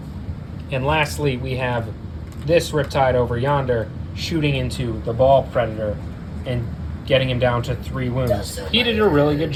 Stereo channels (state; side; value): identical; both; correlation 1.00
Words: And lastly, we have this Riptide over yonder shooting into the Ball Predator and getting him down to 3 wounds. He did a really good